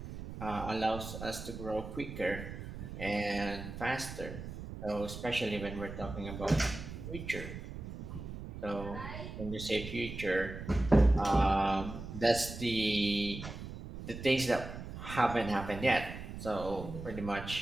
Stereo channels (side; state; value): right; noise; rumble, 9 dB below the sound